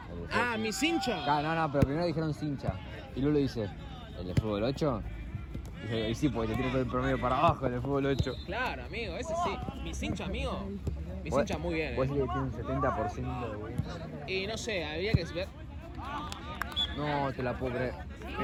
Ah, mi cincha. No, pero primero dijeron Cincha. Y Lulo dice, ¿el de fútbol 8? Y sí, porque te tiene todo el promedio para abajo el de fútbol 8. Claro, amigo, ese sí. Mi cincha, amigo. Mi cincha muy bien. Vos decís que tiene un 70% de win. Y no sé, había que ver. No, te la puedo creer.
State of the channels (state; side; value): identical; both; correlation 1.00